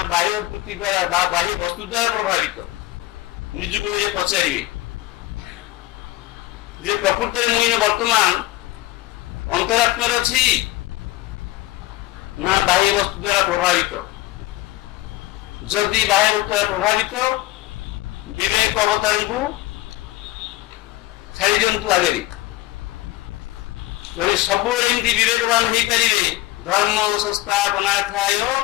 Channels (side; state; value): right; quieter; 17.5 dB